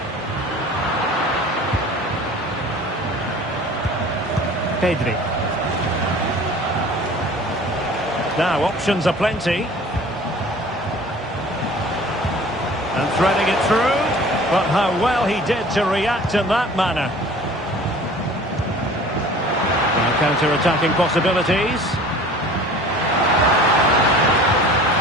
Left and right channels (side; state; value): both; normal; correlation 0.45